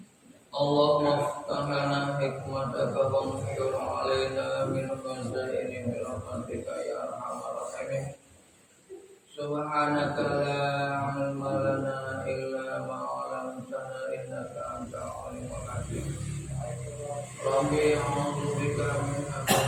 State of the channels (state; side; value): identical; both; correlation 1.00